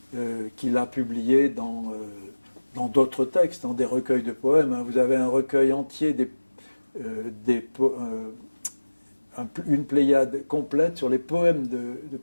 qu'il a publiés dans d'autres textes, dans des recueils de poèmes. Vous avez un recueil entier, une pléiade complète sur les poèmes de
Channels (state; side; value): inverted; both; correlation -1.00